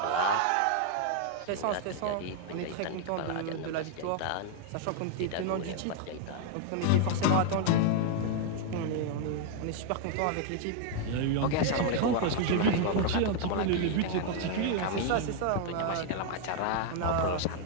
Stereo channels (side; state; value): both; different; correlation 0.00